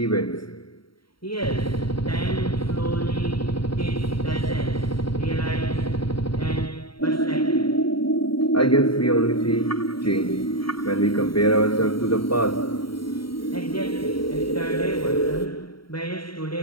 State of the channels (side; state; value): right; late; 0.74 ms